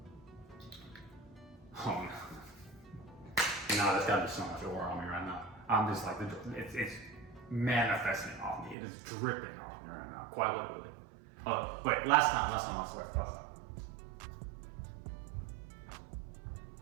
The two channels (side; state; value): left; drops out; at 8.8 s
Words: Oh no. Nah, that's gotta be so much aura on me right now. I'm just like, it's manifesting off me. It is dripping off me right now, quite literally. Oh, wait, last time, I swear, last time.